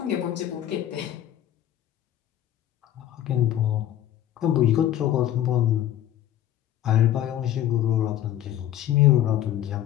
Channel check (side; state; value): right; quieter; 11.9 dB